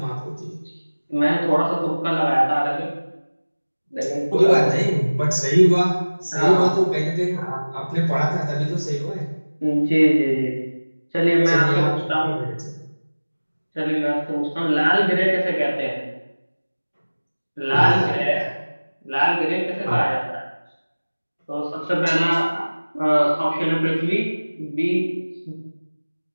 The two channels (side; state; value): both; inverted; correlation -1.00